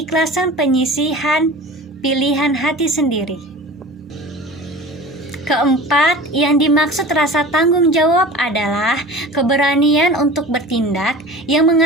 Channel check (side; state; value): both; normal; correlation 0.38